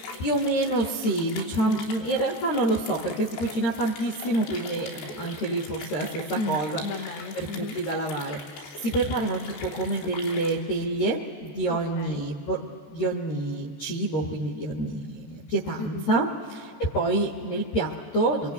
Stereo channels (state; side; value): late; right; 14 ms